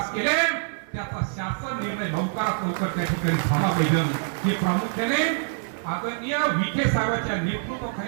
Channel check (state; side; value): silent; left; digital silence